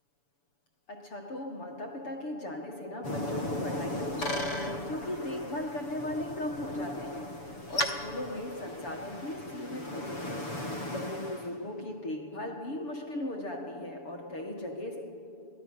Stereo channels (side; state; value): right; late; 7.0 ms